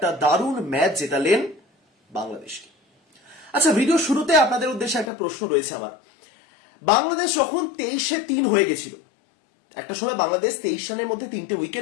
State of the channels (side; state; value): right; drops out; at 5.1 s